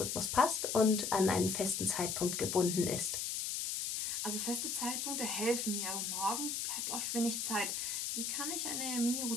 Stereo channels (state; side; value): noise; left; hiss, 1 dB below the sound